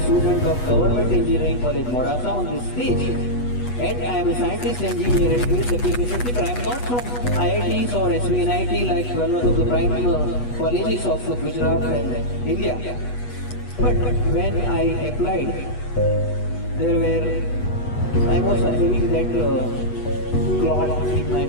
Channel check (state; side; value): late; right; 8.2 ms